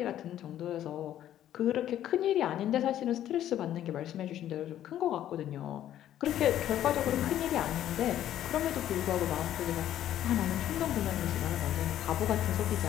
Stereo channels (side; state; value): right; quieter; 11.7 dB